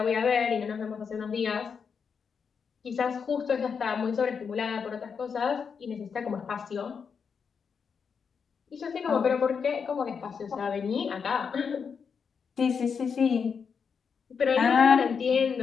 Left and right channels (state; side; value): quieter; right; 6.2 dB